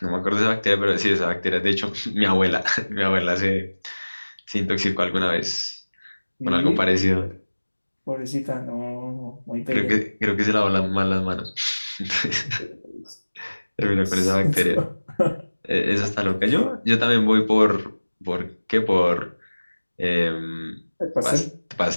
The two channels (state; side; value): inverted; both; correlation -1.00